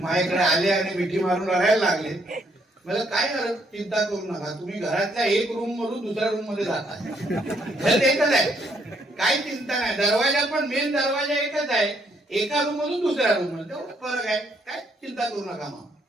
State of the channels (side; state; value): both; normal; correlation 0.71